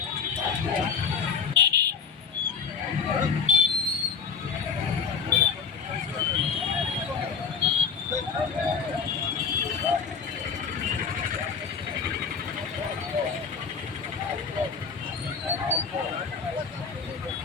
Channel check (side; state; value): right; quieter; 6.0 dB